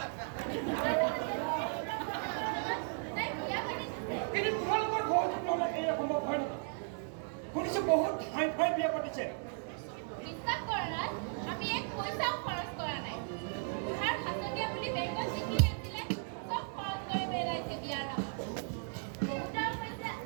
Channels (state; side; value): silent; left; 54 dB below the other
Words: কিন্তু তোমালোকৰ ঘৰত নহ'লে এই সম্ভৱ হয় নেকি? শুনিছোঁ বহুত ঠাই ঠাই বিয়া পাতিছে। বিশ্বাস কৰা নাই, আমি এক পইচাও খৰচ কৰা নাই। বুঢ়াৰ হাতনীয়া বুলি বেংকত যিখিনি আছিলে চব খৰচ কৰি পেলাইছে বিয়াৰ নামত।